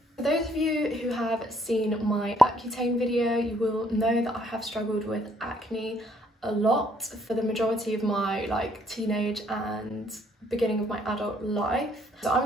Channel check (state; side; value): normal; both; correlation 0.66